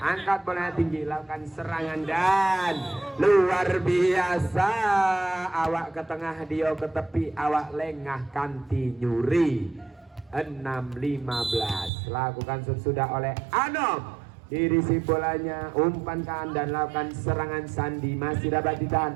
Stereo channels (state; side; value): drops out; left; at 11.9 s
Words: bolanya tinggi, lakukan serangan dan luar biasa. Awak ke tengah, Dio ke tepi, awak lengah, Kanti nyuri. 6-15. Lakukan sesudah oleh Anom. Dirisi bolanya, umpankan dan lakukan serangan Sandi. Masih dapat ditahan,